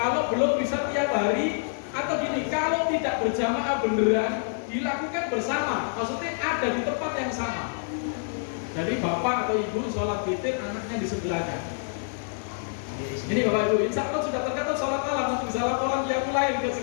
belum bisa tiap hari atau gini, kalau tidak berjamaah beneran dilakukan bersama, maksudnya ada di tempat yang sama. Jadi bapak atau ibu sholat witir, anaknya di sebelahnya. Ini bapak ibu, insya Allah sudah tercatat sholat malam untuk bisa laporan yang lain ke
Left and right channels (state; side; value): silent; right; digital silence